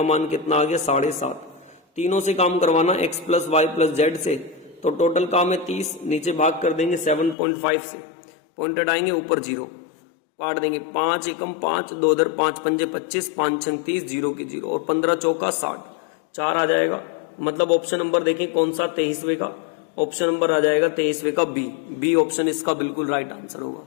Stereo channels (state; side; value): drops out; right; at 7.4 s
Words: मान कितना आ गया 7.5। तीनों से काम करवाना x plus Y plus Z से, तो टोटल काम है 30। नीचे भाग कर देंगे 7.5 से, पॉइंटेड आएंगे ऊपर 0, काट देंगे 5 एकम 5, 2 इधर 5 पंजे 25, 5 6 30, 0 की 0 और 15 चौका 60, 4 आ जाएगा। मतलब ऑप्शन नंबर देखें कौन सा 23वें का, ऑप्शन नंबर आ जाएगा 23वें का बी ऑप्शन इसका बिल्कुल राइट आंसर होगा।